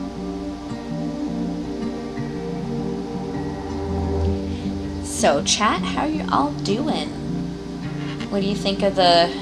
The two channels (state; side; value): identical; both; correlation 1.00